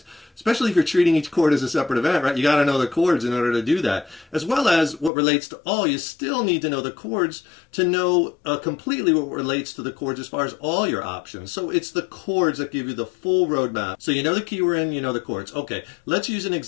Especially if you're treating each chord as a separate event, right? You got to know the chords in order to do that. As well as what relates to all, you still need to know the chords to know completely what relates to the chords as far as all your options. So it's the chords that give you the full roadmap. So you know the key we're in, you know the chords. Okay, let's use an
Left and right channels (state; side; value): drops out; right; at 5.1 s